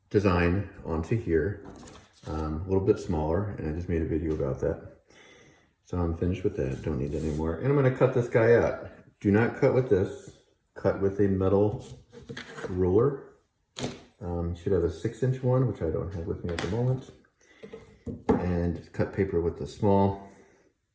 design onto here, a little bit smaller, and I just made a video about that. So I'm finished with that, don't need it anymore. And I'm gonna cut this guy out. Do not cut with this, cut with a metal ruler. You should have a 6-inch one, which I don't have with me at the moment. And cut paper with the small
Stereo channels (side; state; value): both; identical; correlation 1.00